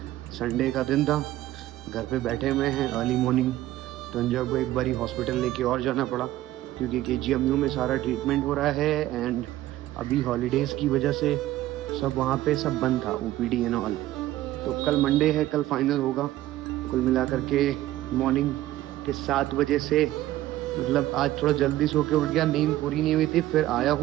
संडे का दिन था, घर पे बैठे हुए हैं। अर्ली मॉर्निंग तंजा को एक बारी हॉस्पिटल लेके और जाना पड़ा क्योंकि KGMU में सारा ट्रीटमेंट हो रहा है एंड अभी हॉलीडेज़ की वजह से सब वहाँ पे सब बंद था, OPD एंड ऑल। तो कल मंडे है, कल फाइनल होगा। कुल मिला करके मॉर्निंग के 7 बजे से, मतलब आज थोड़ा जल्दी सो के उठ गया, नींद पूरी नहीं हुई थी। फिर आया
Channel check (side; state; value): left; quieter; 15.1 dB